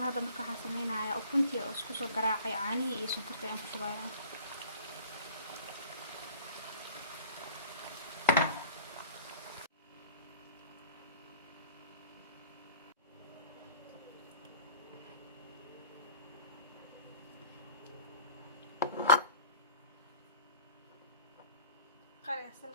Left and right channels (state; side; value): inverted; both; correlation -0.47